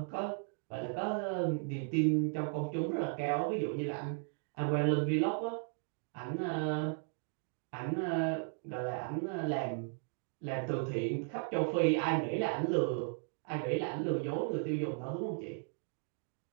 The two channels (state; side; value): silent; left; 54 dB below the other